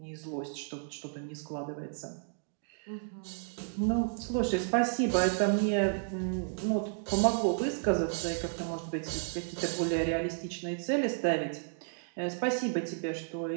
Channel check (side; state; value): left; silent; digital silence